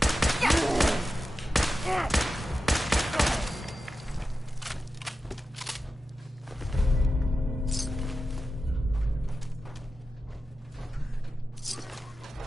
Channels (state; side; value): normal; both; correlation 0.92